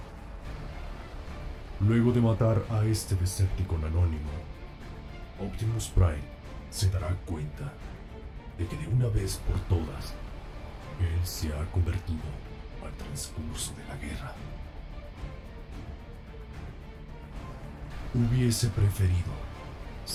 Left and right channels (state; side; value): identical; both; correlation 1.00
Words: Luego de matar a este Decepticon anónimo, Optimus Prime se dará cuenta de que de una vez por todas, él se ha convertido al transcurso de la guerra. Hubiese preferido,